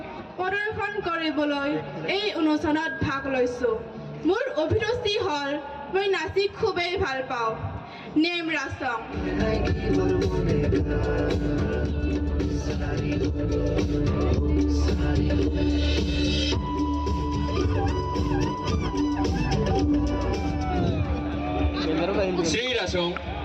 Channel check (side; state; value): both; identical; correlation 1.00